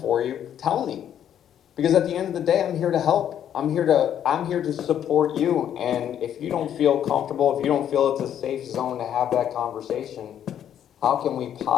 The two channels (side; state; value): right; quieter; 9.9 dB